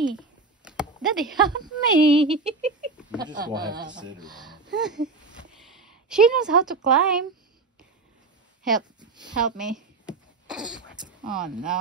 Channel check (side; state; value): left; quieter; 4.1 dB